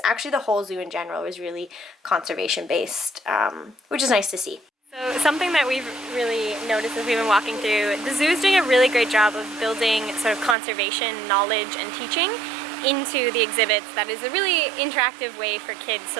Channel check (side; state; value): left; drops out; at 10.6 s